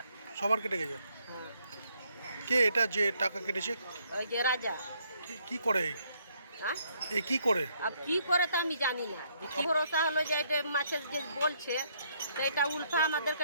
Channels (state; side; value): inverted; both; correlation -0.70